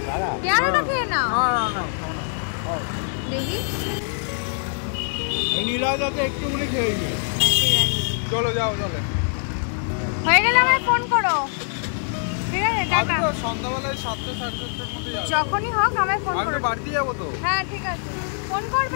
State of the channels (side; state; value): right; silent; digital silence